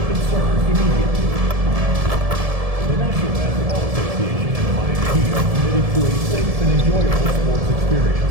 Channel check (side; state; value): left; late; 1.7 ms